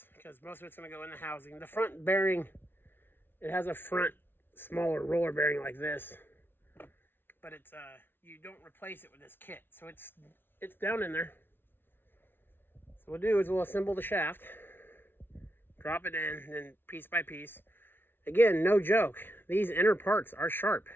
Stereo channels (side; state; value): right; late; 0.10 ms